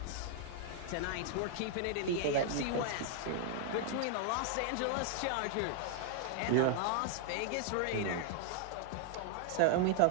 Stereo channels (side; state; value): both; different; correlation -0.01